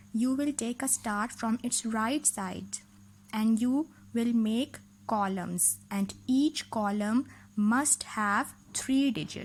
You will take a start from its right side and you will make columns and each column must have 3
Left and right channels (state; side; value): identical; both; correlation 1.00